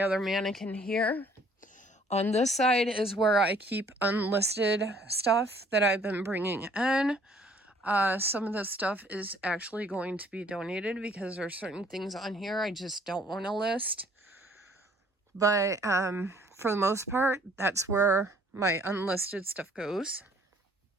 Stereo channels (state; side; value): normal; both; correlation 0.59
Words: other mannequin here. On this side is where I keep unlisted stuff that I've been bringing in. Some of this stuff is actually going to be donated because there are certain things on here I just don't want to list. But for the most part, that's where my unlisted stuff goes.